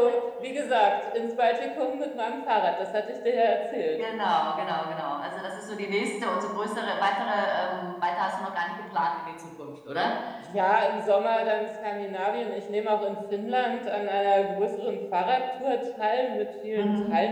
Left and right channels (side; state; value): both; identical; correlation 1.00